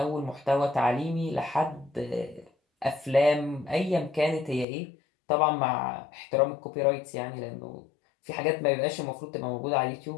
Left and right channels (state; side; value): drops out; right; at 4.7 s